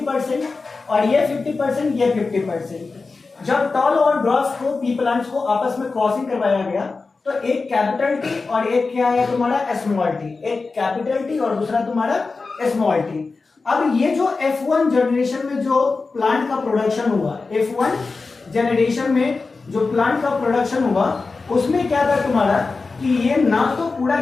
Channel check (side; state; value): right; quieter; 4.1 dB